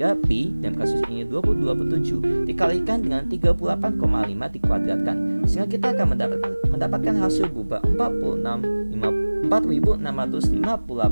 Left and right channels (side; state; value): both; inverted; correlation -1.00